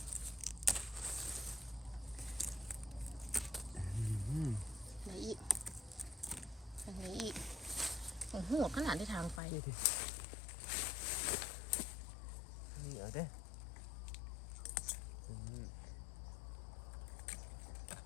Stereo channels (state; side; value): drops out; right; at 9.4 s